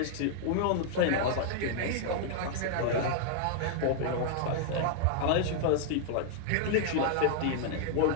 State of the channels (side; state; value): both; different; correlation 0.00